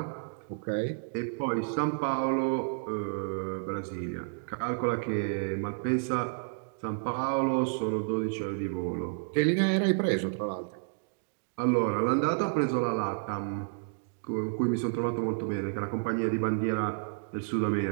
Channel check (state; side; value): silent; left; digital silence